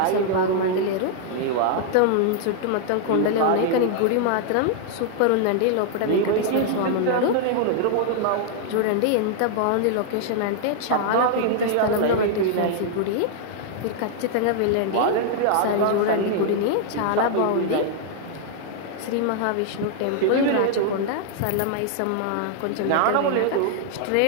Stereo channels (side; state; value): both; different; correlation -0.01